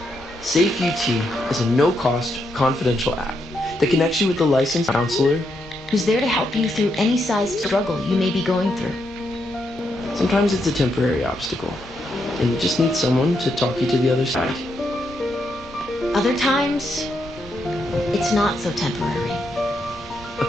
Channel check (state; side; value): normal; both; correlation 0.80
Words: Safe UT is a no-cost, confidential app that connects you with a licensed counselor Who's there to help you through any size struggle you may be going through. Sometimes it's a temporary obstacle, and you just need someone to talk you to the other side. Other times, it's not so temporary. A